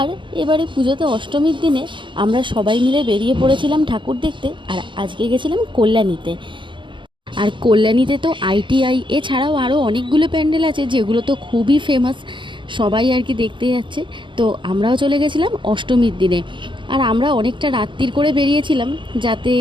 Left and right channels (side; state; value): left; late; 0.23 ms